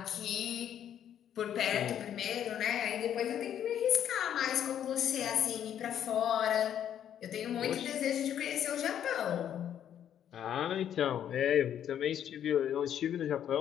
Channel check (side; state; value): right; quieter; 9.9 dB